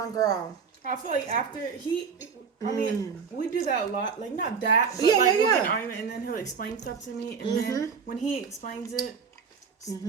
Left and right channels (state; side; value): quieter; left; 6.0 dB